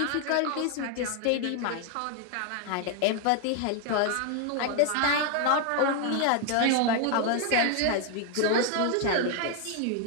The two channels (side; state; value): both; different; correlation 0.00